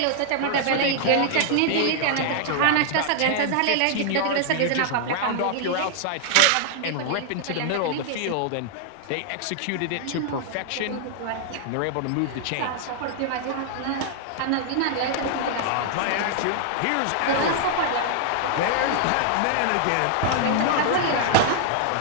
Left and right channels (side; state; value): both; different; correlation 0.00